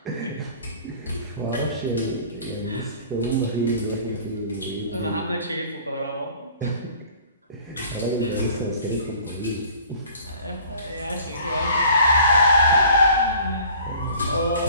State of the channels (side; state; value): both; inverted; correlation -0.49